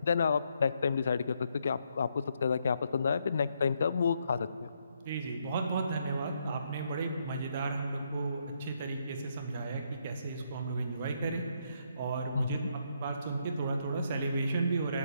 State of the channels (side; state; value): both; inverted; correlation -0.76